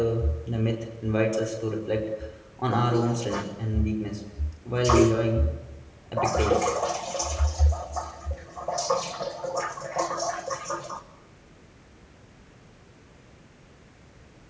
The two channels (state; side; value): identical; both; correlation 1.00